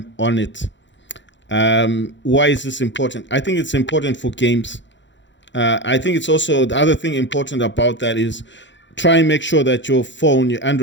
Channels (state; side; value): late; right; 0.53 ms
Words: on it. Why is this important? I think it's important for games. I think it's also the other thing important about that is try and make sure that your phone, your